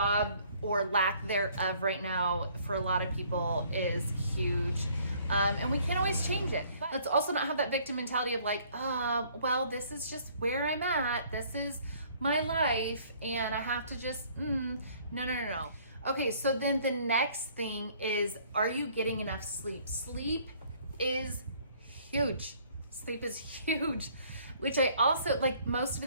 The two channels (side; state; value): both; inverted; correlation -0.60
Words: or lack thereof right now for a lot of people is huge. And we can't always change it. But let's also not have that victim mentality of like, well, this is just where I'm at. This is my life and I have to just, no. Okay, so then the next thing is, are you getting enough sleep? Sleep is huge. Sleep is huge. Which I also, like most of